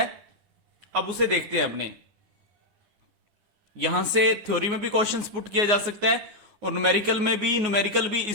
अब उसे देखते हैं अपने। यहां से थ्योरी में भी क्वेश्चंस पुट किया जा सकता है और न्यूमेरिकल में भी। न्यूमेरिकल भी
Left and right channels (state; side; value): late; left; 9.6 ms